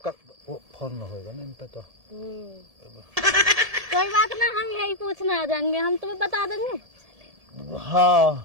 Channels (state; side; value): late; left; 1.7 ms